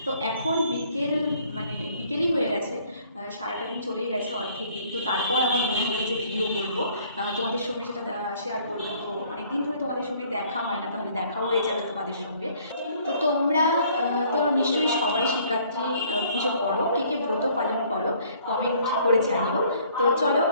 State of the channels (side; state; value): both; inverted; correlation -0.60